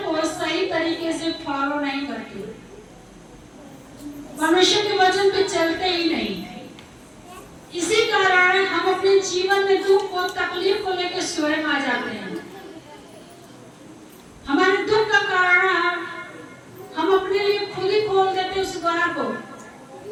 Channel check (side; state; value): both; identical; correlation 1.00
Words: को सही तरीके से फॉलो नहीं करते, परमेश्वर के वचन पे चलते ही नहीं। इसी कारण हम अपने जीवन में दुख और तकलीफ को लेकर स्वयं आ जाते हैं। हमारे दुख का कारण हम अपने लिए खुद ही खोल देते उस द्वार को,